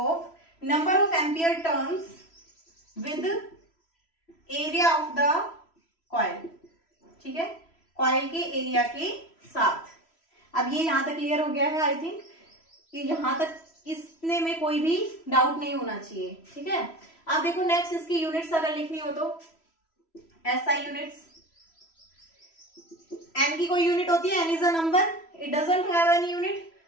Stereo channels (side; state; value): right; late; 3.0 ms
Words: number of ampere turns with area of the coil. ठीक है, कॉइल के एरिया के साथ। अब ये यहां तक क्लियर हो गया है आई थिंक, कि यहां तक इसने में कोई भी डाउट नहीं होना चाहिए। ठीक है, आप देखो नेक्स्ट इसकी यूनिट्स अगर लिखनी हो तो एसआई यूनिट्स। एन की कोई यूनिट होती है? N is a number, it doesn't have any unit,